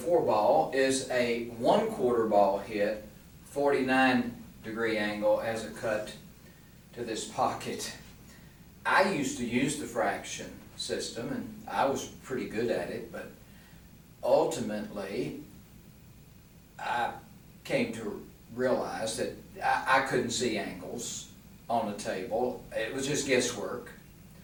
ball is a 1/4 ball hit, 49-degree angle as a cut to this pocket. I used to use the fraction system, and I was pretty good at it, but ultimately I came to realize that I couldn't see angles on the table. It was just guesswork.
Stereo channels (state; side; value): identical; both; correlation 1.00